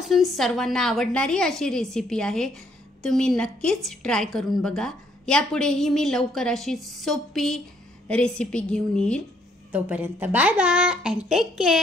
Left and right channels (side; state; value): both; normal; correlation 0.68